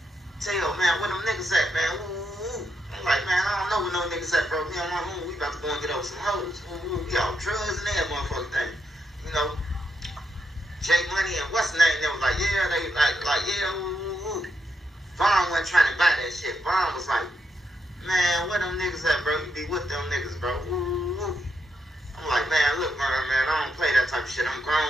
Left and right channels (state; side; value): normal; both; correlation 0.81